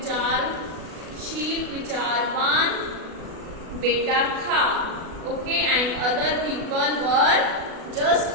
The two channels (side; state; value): left; late; 37 ms